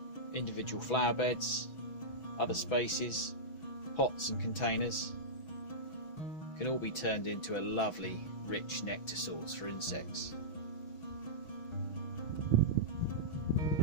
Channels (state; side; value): late; right; 6.1 ms